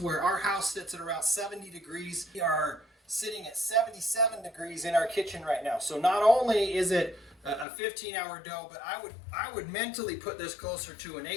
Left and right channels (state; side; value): drops out; right; at 7.7 s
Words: where our house sits at around 70 degrees. We are sitting at 77 degrees in our kitchen right now. So not only is it a 15-hour dough, but I would mentally put this closer to an